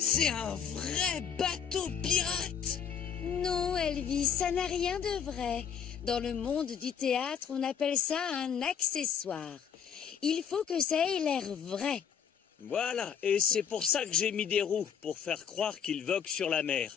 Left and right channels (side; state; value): right; quieter; 7.9 dB